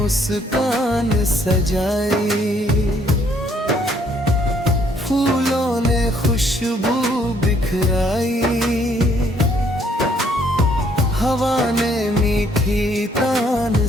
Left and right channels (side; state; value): both; normal; correlation 0.66